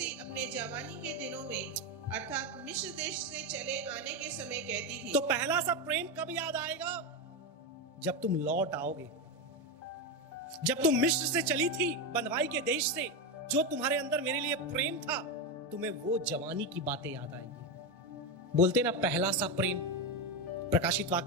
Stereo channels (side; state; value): both; normal; correlation 0.12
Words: अपने जवानी के दिनों में, अर्थात मिस्र देश से चले आने के समय कहती थी। तो पहला सा प्रेम कब याद आएगा? जब तुम लौट आओगे। जब तुम मिस्र से चली थी, बंधुआई के देश से, जो तुम्हारे अंदर मेरे लिए प्रेम था, तुम्हें वो जवानी की बातें याद आएंगी। बोलते ना पहला सा प्रेम, प्रकाशित